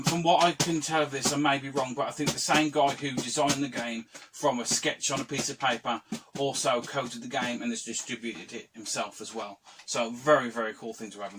From what I can tell of this, I may be wrong, but I think the same guy who designed the game from a sketch on a piece of paper also coded the game and has distributed it himself as well. So very, very cool thing to have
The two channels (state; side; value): identical; both; correlation 1.00